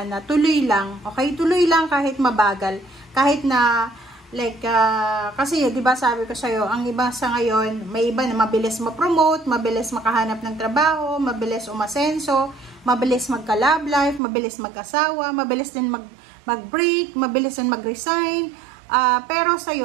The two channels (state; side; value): drops out; left; at 14.2 s